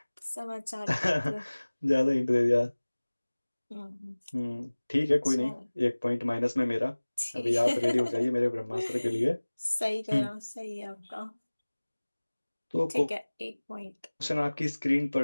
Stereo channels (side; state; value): both; inverted; correlation -1.00